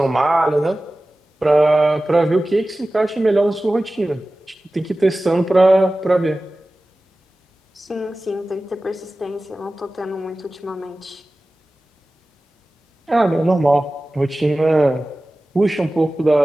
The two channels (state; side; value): normal; both; correlation 0.96